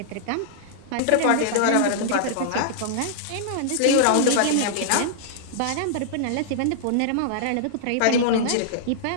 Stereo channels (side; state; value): both; different; correlation -0.02